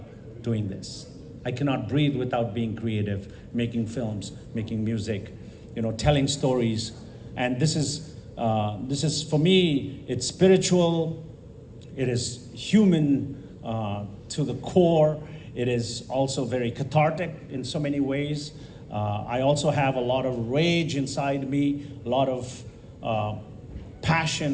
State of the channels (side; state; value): both; identical; correlation 1.00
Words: doing this. I cannot breathe without being creative, making films, making music, telling stories. And this is for me, it's spiritual, it is human to the core. It is also very cathartic in so many ways. I also have a lot of rage inside me, a lot of